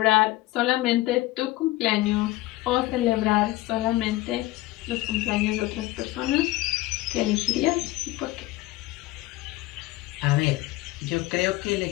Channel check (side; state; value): right; quieter; 18.0 dB